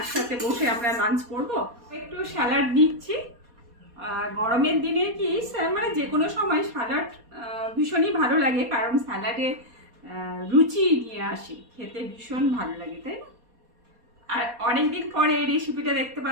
বসে আমরা লাঞ্চ করব। একটু স্যালাড দিচ্ছি। গরমের দিনে কি মানে যে কোনো সময় স্যালাড ভীষণই ভালো লাগে, কারণ স্যালাডে রুচি নিয়ে আসে, খেতে ভীষণ ভালো লাগে, তাই না? আর অনেকদিন পরে এই রেসিপিটা দেখতে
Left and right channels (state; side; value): late; left; 4.2 ms